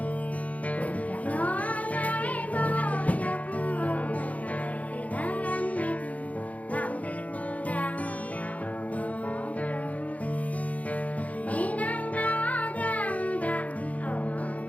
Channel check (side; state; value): right; late; 0.070 ms